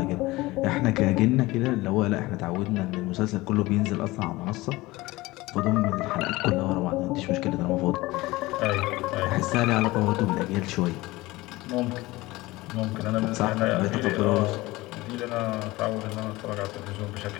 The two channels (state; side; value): quieter; right; 20.1 dB